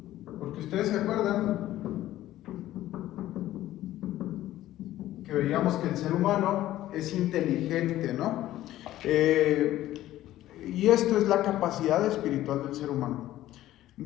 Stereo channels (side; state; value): right; quieter; 14.3 dB